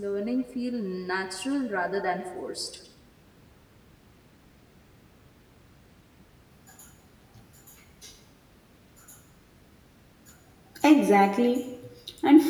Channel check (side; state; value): both; identical; correlation 1.00